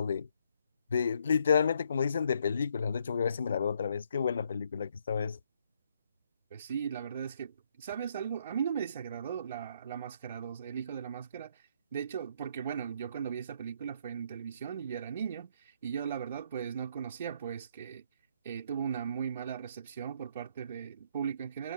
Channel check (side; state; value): both; inverted; correlation -0.71